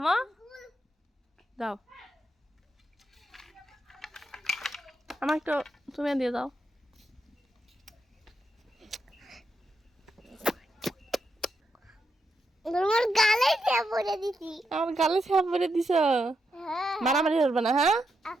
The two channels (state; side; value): normal; both; correlation 0.83